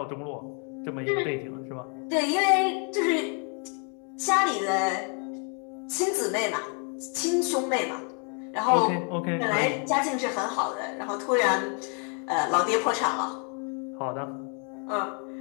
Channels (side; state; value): right; quieter; 39.1 dB